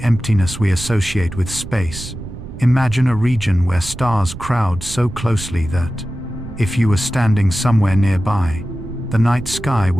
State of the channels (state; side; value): noise; right; rumble, 12 dB below the sound